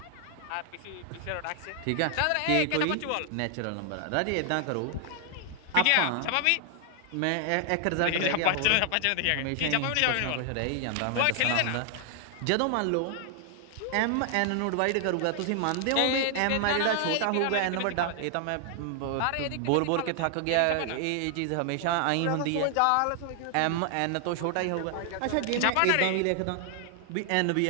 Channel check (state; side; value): different; both; correlation 0.00